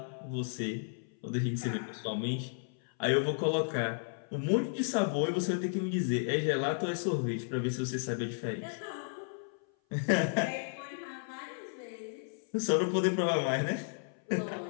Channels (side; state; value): right; silent; 55 dB below the other